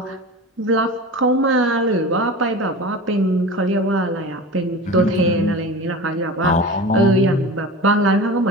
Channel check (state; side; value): normal; both; correlation 0.32